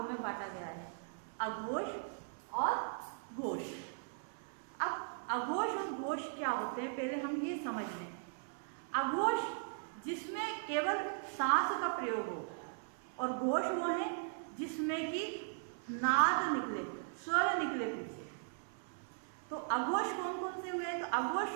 में बांटा गया है, अघोष और घोष। अब अघोष और घोष क्या होते हैं पहले हम ये समझ लें। अघोष जिसमें केवल सांस का प्रयोग हो और घोष वो है जिसमें कि नाद निकले, स्वर निकले पीछे। तो अघोष कौन कौन से हुए? तो अघोष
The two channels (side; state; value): left; silent; 52 dB below the other